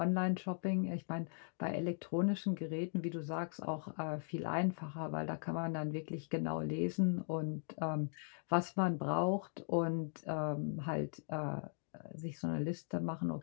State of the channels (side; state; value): right; silent; digital silence